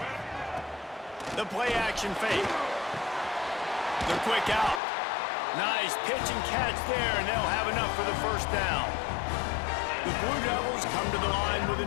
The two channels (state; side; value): drops out; right; at 4.8 s